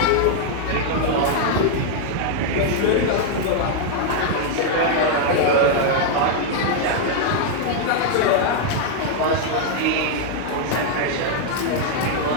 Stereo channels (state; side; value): different; both; correlation 0.00